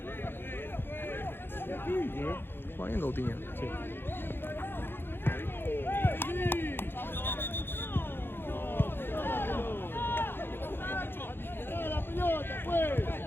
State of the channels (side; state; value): right; late; 0.10 ms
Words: Juega bien Coutinho. Sí.